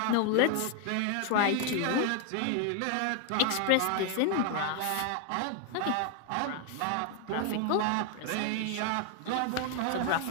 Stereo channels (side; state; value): both; different; correlation 0.00